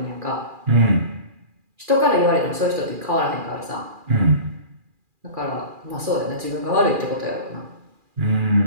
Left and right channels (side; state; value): left; late; 2.4 ms